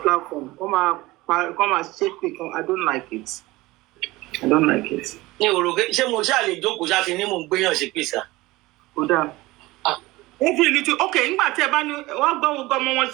platform. Come máa ṣépè kan. I don't like it. I don't like it. Ní òrògbé ṣé mo ṣáà lè jókòó ṣáà ti ní mò ń gbéyàn ṣe pèsè. Ó dáa. Every little okay, nígbà tí ẹ bá ní wọ́n gbọ́ gbogbo ọmọ wọn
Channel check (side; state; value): left; quieter; 19.9 dB